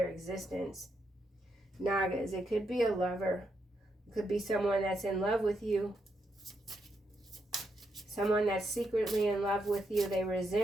existence. Nagas, it could be a lover. It could be someone that's in love with you. Someone that's secretly in love with you. They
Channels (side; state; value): both; normal; correlation 0.81